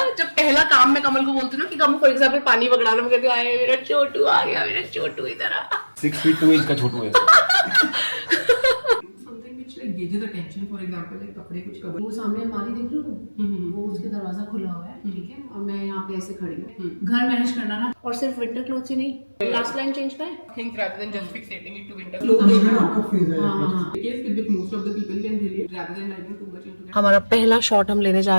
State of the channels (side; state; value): both; inverted; correlation -1.00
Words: जब पहला काम मैं कमल को बोलती हूँ ना कि कमल फॉर एग्जाम्पल पानी पकड़ाना, मैं कहती हूँ आए मेरा छोटू आ गया, मेरा छोटू इधर आ। 6 feet 2 inch का छोटू है। gauges attention, for example, like कपड़े कुछ कवर। वो सामने अलमारी देख रहे हो, वो उसके दरवाजा खुला हुआ है, ठीक है, और मैं यहाँ पे ऐसे खड़ी हूँ। घर मैनेज करना ना, और सिर्फ विंटर क्लोथ्स ही नहीं, लास्ट लाइन चेंज का है। Things rather than just fixating it to winter clothes. Yes, with most of the people can relate rather than diving too much into that. हमारा पहला शॉट हम लेने जा